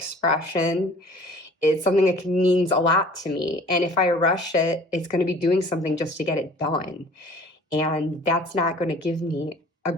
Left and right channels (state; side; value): normal; both; correlation 0.49